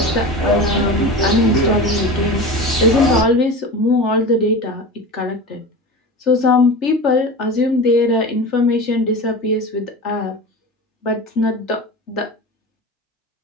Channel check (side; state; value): both; normal; correlation 0.30